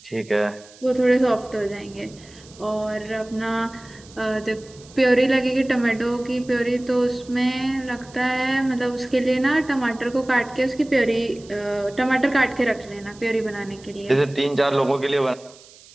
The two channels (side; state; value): right; noise; hiss, 23 dB below the sound